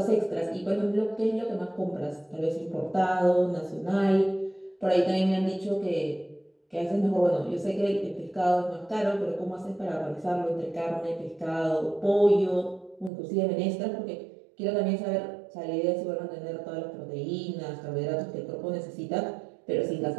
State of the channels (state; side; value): drops out; left; at 13.1 s